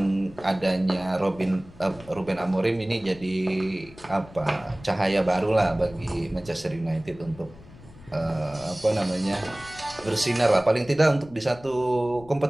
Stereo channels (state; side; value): noise; left; rumble, 20 dB below the sound